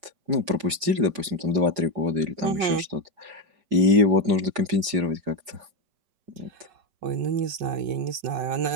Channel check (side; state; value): left; late; 4.9 ms